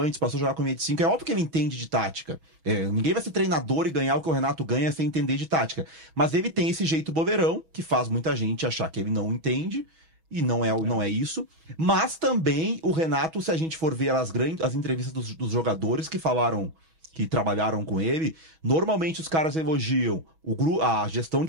passou a jogar com linha de 5, é óbvio que ele entende de tática, ninguém vai ser treinador e ganhar o que o Renato ganha sem entender de tática, mas ele tem esse jeito bobeirão, que faz muita gente achar que ele não entende, e não é isso. Mas também o Renato, se a gente for ver as entrevistas dos jogadores que falaram, que trabalharam com ele, normalmente os caras elogiam a gestão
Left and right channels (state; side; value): late; left; 6.2 ms